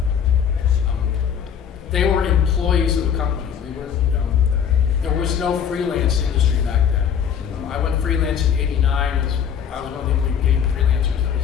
They were employees of the company. There was no freelance industry back then. I went freelance in '89. I was one of the only game freelancers that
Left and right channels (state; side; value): quieter; right; 8.0 dB